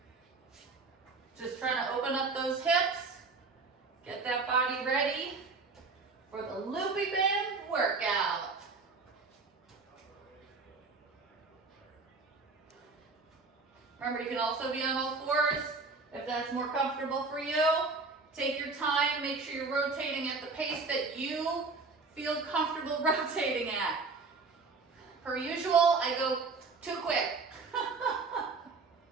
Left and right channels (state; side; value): quieter; left; 4.1 dB